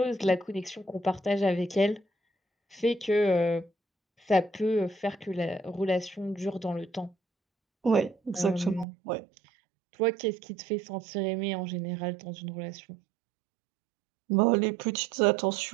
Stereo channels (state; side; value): drops out; left; at 8.8 s